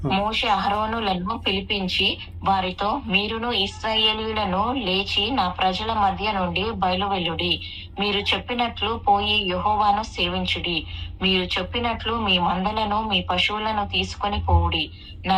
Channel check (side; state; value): both; identical; correlation 1.00